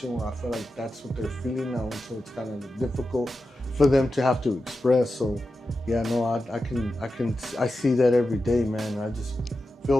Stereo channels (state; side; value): normal; both; correlation 0.91